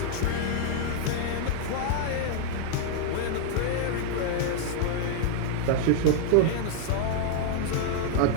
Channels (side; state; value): both; different; correlation -0.01